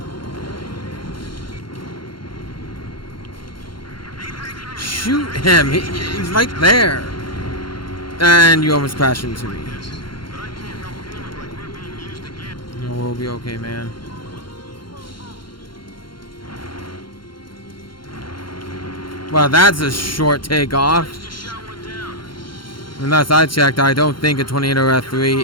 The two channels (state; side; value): late; right; 0.72 ms